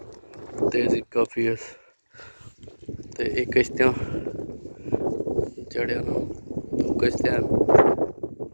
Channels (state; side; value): inverted; both; correlation -1.00